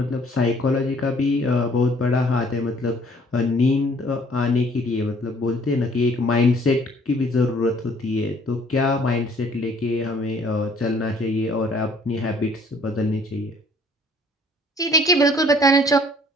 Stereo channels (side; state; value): both; normal; correlation 0.58